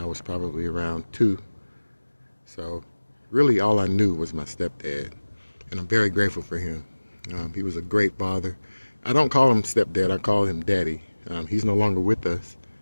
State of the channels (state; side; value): inverted; both; correlation -1.00